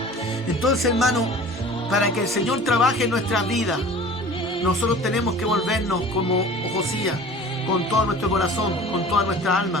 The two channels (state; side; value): normal; both; correlation 0.42